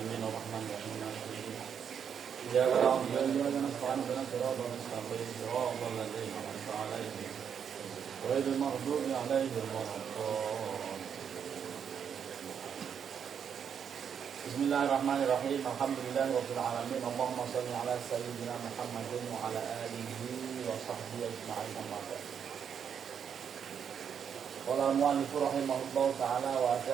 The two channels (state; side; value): quieter; left; 7.7 dB